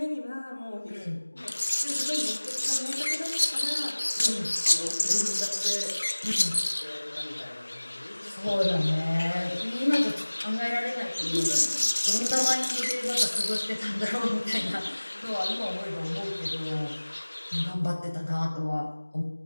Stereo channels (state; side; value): inverted; both; correlation -1.00